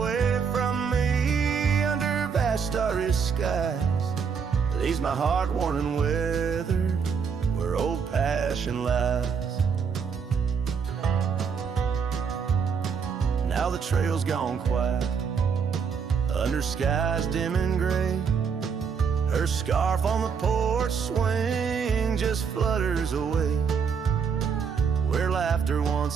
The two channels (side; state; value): left; quieter; 6.3 dB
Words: from me, under vast starry skies, leaves my heart worn and weathered, where old passion lies. Now the trail's gone quiet, under skies dim and gray. Her scarf on the porch swing just flutters away. Where laughter